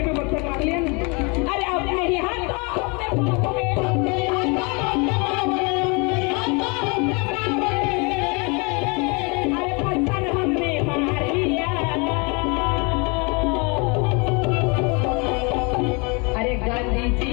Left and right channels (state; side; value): quieter; right; 31.0 dB